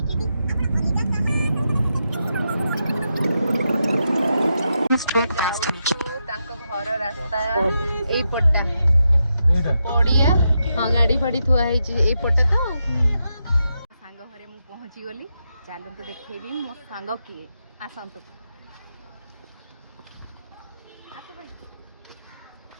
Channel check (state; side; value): inverted; both; correlation -0.85